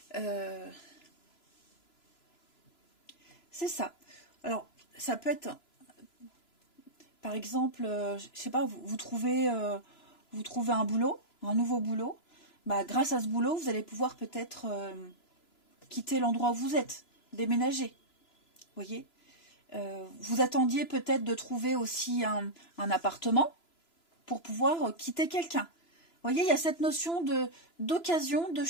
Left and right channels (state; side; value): late; right; 3.0 ms